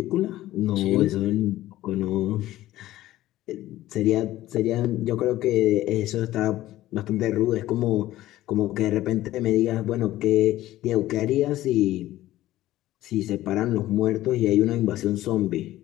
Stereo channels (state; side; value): quieter; right; 15.2 dB